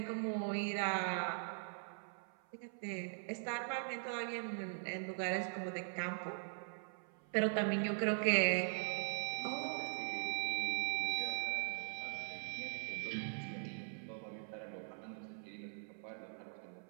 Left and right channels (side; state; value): left; silent; 50 dB below the other